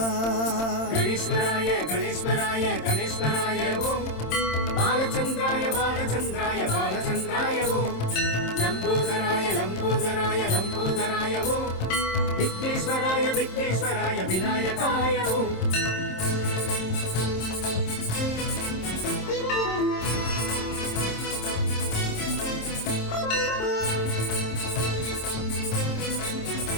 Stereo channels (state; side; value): late; right; 26 ms